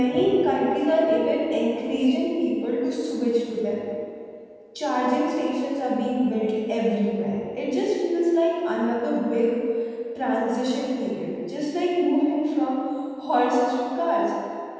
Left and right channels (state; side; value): identical; both; correlation 1.00